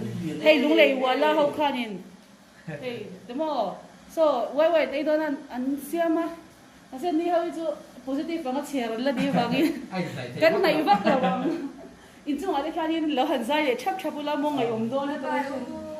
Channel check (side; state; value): both; identical; correlation 1.00